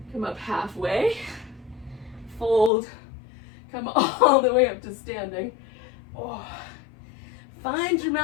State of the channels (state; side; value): drops out; right; at 2.7 s